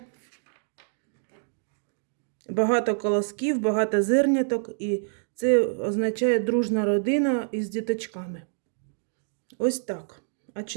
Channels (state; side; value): silent; left; digital silence